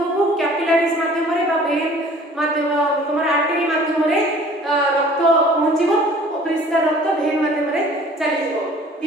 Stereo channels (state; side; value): normal; both; correlation 0.50